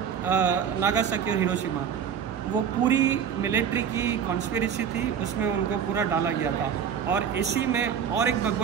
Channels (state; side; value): quieter; left; 7.8 dB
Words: Nagasaki और हिरोशिमा. वो पूरी मिलिट्री की कॉन्स्पिरेसी थी, उसमें उनको पूरा डाला गया था. और इसी में और एक